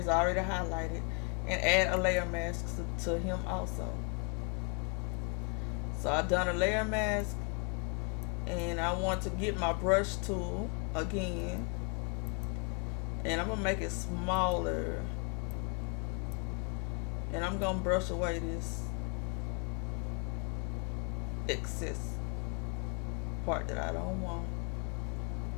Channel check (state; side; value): quieter; right; 36.8 dB